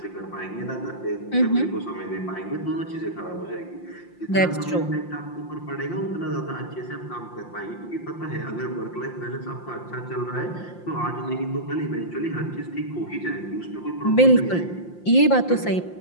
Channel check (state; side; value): late; right; 5.7 ms